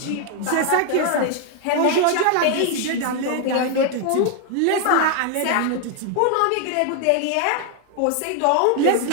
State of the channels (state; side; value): different; both; correlation 0.00